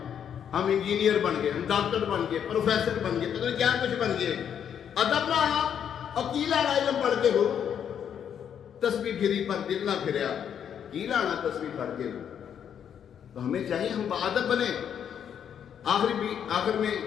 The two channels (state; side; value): quieter; right; 8.6 dB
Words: ہم انجینئر بن گئے، ہم ڈاکٹر بن گئے، پروفیسر بن گئے، پتہ نہیں کیا کچھ بن گئے، ادب نہ آیا اور کی لینا علم پڑھ کے ہو۔ تسبیح پھری پر دل نہ پھریا، کی لانا تسبیح پڑھ کے ہو۔ تو ہمیں چاہیے ہم باادب بنے۔ آخر میں